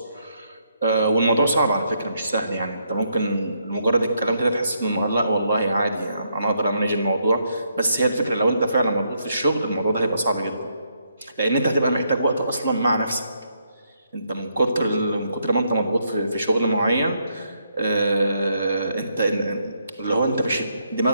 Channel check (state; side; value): inverted; both; correlation -0.76